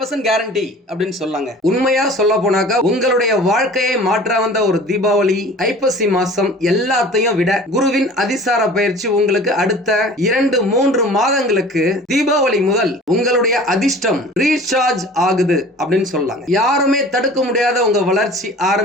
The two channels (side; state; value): both; normal; correlation 0.43